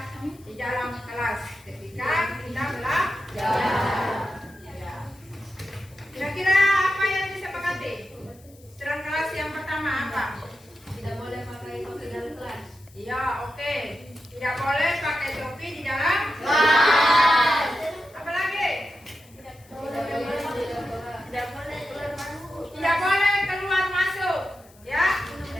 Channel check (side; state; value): left; noise; hiss, 27 dB below the sound